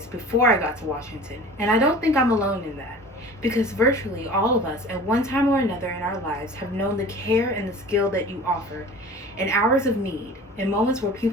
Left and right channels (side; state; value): both; normal; correlation 0.41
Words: before I got to Washington, and I don't think I'm alone in that, because virtually all of us at one time or another in our lives have known the care and the skill that you offer in hours of need, in moments where